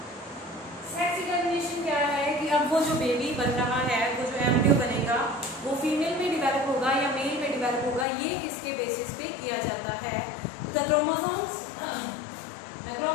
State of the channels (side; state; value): right; drops out; at 8.1 s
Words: Sex determination क्या है कि अब वो जो बेबी बन रहा है, वो जो एम्ब्रियो बनेगा, वो फीमेल में डिवेलप होगा या मेल में डिवेलप होगा, ये किसके बेसिस पे किया जाता है? तो the chromosomes